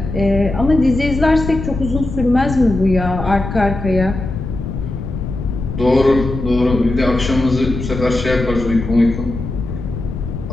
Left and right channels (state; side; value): noise; left; rumble, 6 dB below the sound